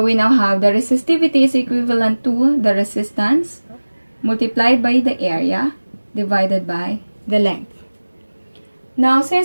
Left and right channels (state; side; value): inverted; both; correlation -1.00